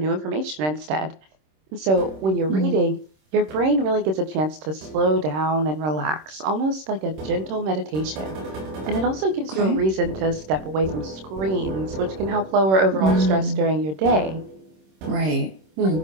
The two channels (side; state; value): left; late; 26 ms